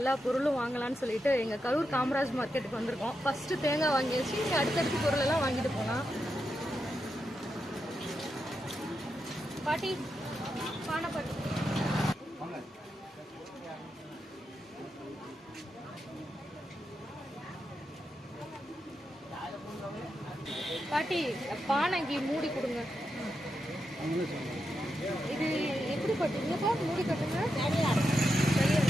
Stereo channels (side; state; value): both; normal; correlation 0.86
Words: பொருளும் வாங்கலாம்னு சொல்லிட்டு எங்க கரூர் காமராஜ் மார்க்கெட்டுக்கு வந்திருக்கோம். ஃபர்ஸ்ட் தேங்காய் வாங்கியாச்சு, அடுத்தடுத்து பொருள் எல்லாம் வாங்கிட்டு போலாம். பாட்டி பானை பாட்டி பாட்டி பானைக்கு மூடி கொடுங்க. இது எப்படி பட்டுங்கப்பா? மூடி கட்டுங்க.